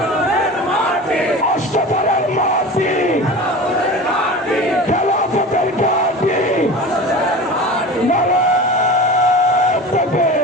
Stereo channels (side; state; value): both; normal; correlation 0.34